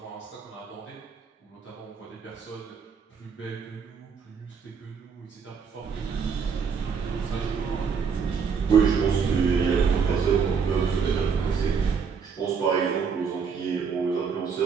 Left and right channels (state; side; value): quieter; left; 6.1 dB